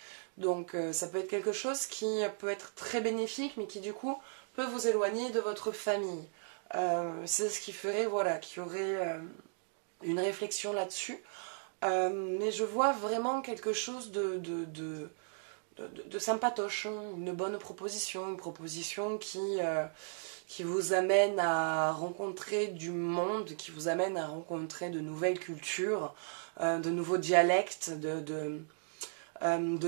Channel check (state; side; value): silent; left; digital silence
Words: Donc ça peut être quelque chose qui peut être très bénéfique, mais qui du coup peut vous éloigner de votre famille. C'est ce qui ferait, voilà, qu'il y aurait une réflexion là-dessus. Mais je vois vraiment quelque chose de sympatoche, hein, une bonne proposition, une proposition qui vous amène à rencontrer du monde, qui vous amène à rencontrer de nouvelles cultures, de nouveaux dialectes, de